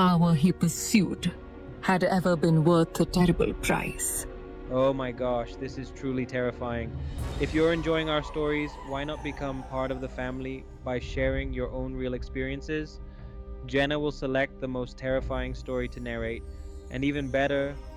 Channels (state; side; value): identical; both; correlation 1.00